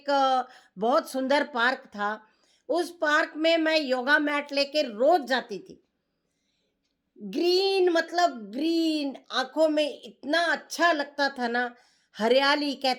बहुत सुंदर पार्क था। उस पार्क में मैं योगा मैट लेके रोज जाती थी। ग्रीन, मतलब ग्रीन, आंखों में इतना अच्छा लगता था ना। हरियाली,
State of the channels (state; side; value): identical; both; correlation 1.00